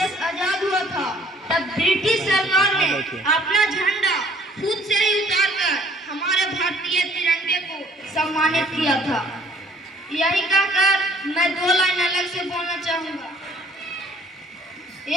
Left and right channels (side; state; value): both; normal; correlation 0.57